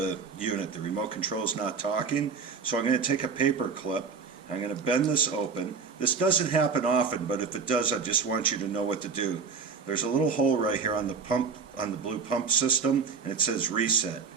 unit. The remote control is not talking, so I'm going to take a paper clip. I'm going to bend this open. This doesn't happen often, but if it does, I just want you to know what to do. There's a little hole right here on the pump, on the blue pump system, and it says reset.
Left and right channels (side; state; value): left; quieter; 5.5 dB